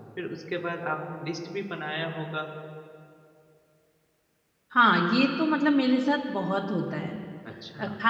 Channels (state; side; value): identical; both; correlation 1.00